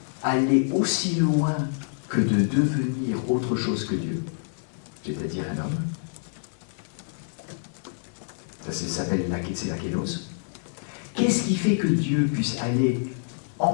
aller aussi loin que de devenir autre chose que Dieu, c'est-à-dire un homme? Ça s'appelle c'est la kélos. Qu'est-ce qui fait que Dieu puisse aller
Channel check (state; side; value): silent; right; digital silence